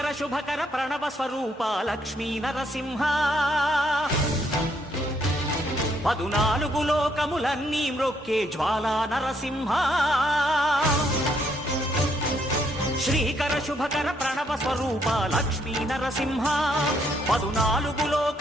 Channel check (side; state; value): both; normal; correlation 0.71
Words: శుభకర ప్రణవ స్వరూప లక్ష్మీ నరసింహ 14 లోకములన్నీ మ్రొక్కే జ్వాలా నరసింహ శ్రీకర శుభకర ప్రణవ స్వరూప లక్ష్మీ నరసింహ 14